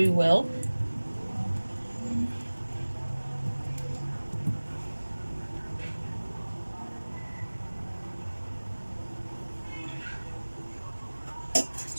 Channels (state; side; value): inverted; both; correlation -1.00